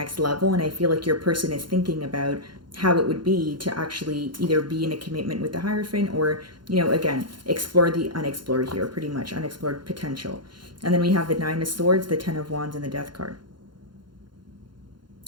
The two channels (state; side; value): late; left; 0.72 ms